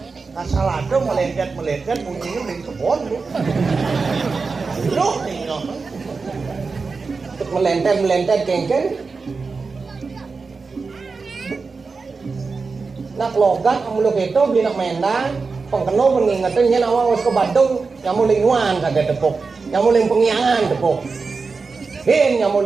asal ada melengket bunyinya dari kebun lu. Loh nih Melentet kengken. Nak logat muluk itu beli nak mendang. Pengkeno mengingatkan yen awak wis ke Bandung nyamuling nuan kagak tepuk. Nyamuling pengiangan tepuk. Hen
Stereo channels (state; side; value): quieter; left; 4.5 dB